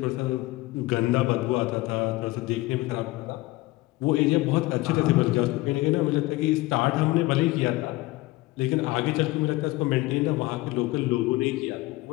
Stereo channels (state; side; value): quieter; right; 20.1 dB